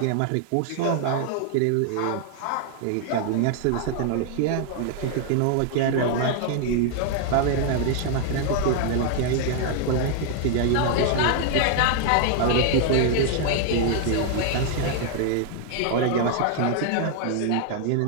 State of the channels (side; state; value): both; different; correlation 0.00